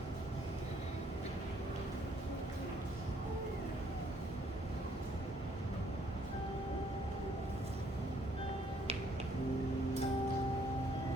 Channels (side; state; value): both; normal; correlation 0.66